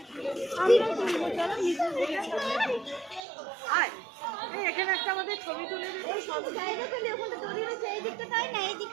এখানে একটা আমাদের ছবি তুলে দিবি।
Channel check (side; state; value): left; drops out; at 3.2 s